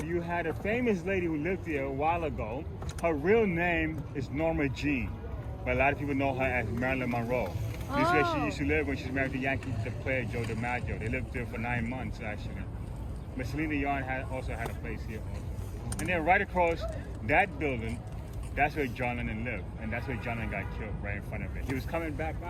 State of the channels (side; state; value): both; identical; correlation 1.00